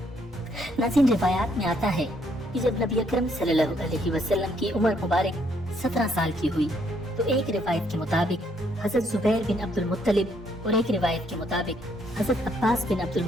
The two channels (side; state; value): both; normal; correlation 0.70